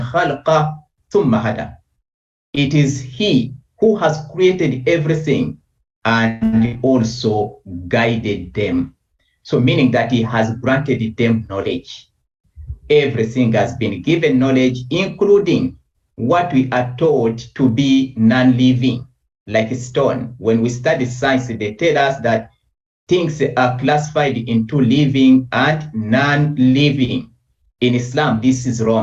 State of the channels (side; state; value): both; identical; correlation 1.00